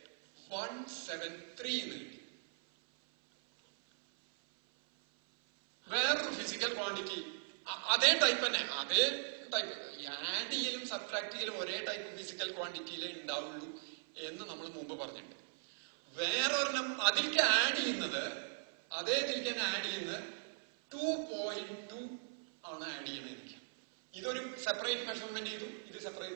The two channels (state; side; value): silent; left; 52 dB below the other